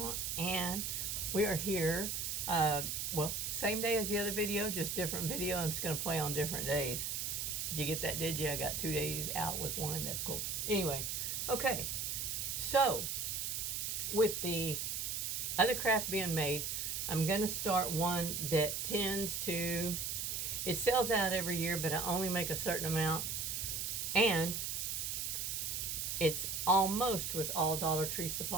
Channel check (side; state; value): right; noise; hiss, 2 dB below the sound